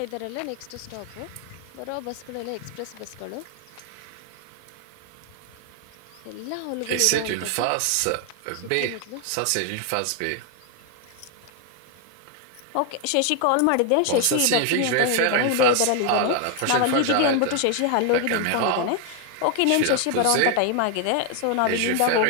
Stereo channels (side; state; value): both; different; correlation 0.00